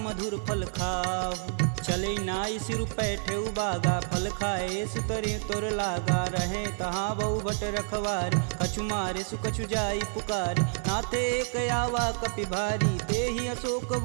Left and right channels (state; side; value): silent; left; 59 dB below the other